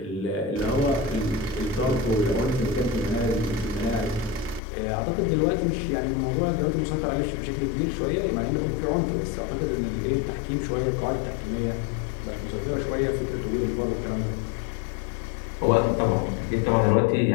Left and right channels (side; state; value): right; drops out; at 4.6 s